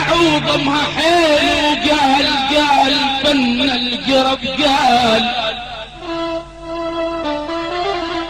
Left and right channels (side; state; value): both; identical; correlation 1.00